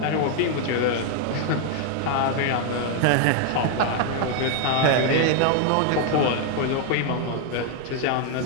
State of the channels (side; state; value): both; different; correlation 0.00